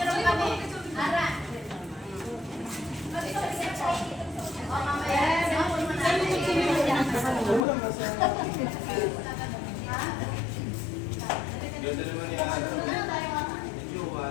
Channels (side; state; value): right; drops out; at 7.7 s